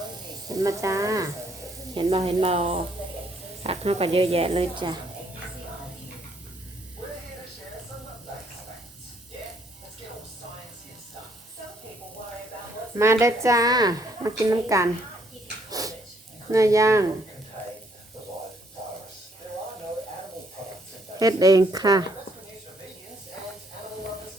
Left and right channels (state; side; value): normal; both; correlation 0.68